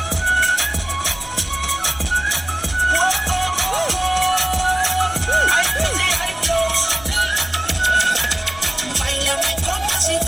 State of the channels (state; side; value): noise; left; rumble, 19 dB below the sound